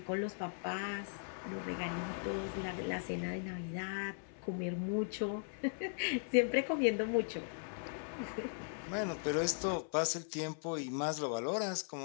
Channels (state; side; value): silent; right; 52 dB below the other